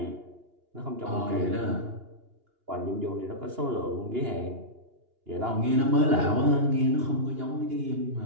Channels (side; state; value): left; late; 2.8 ms